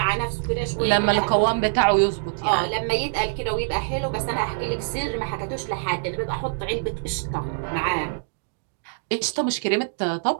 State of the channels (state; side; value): silent; left; digital silence